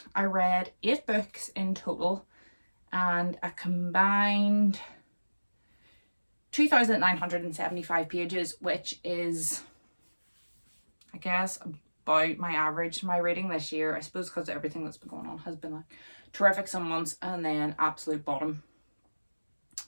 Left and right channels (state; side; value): inverted; both; correlation -1.00